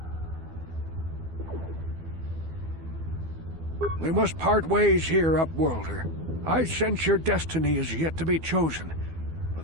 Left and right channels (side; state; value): left; late; 12 ms